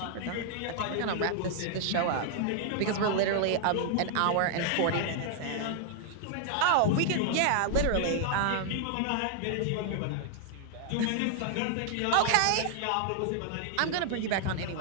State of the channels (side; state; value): both; different; correlation -0.01